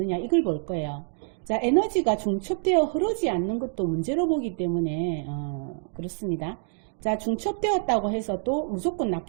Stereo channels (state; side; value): silent; left; 56 dB below the other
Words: 이걸 볼 거예요. 자, 에너지가 중첩되어 흐르지 않는 것도 문제로 보기 때문에 그렇습니다. 자, 중첩되었다고 해서 또 무조건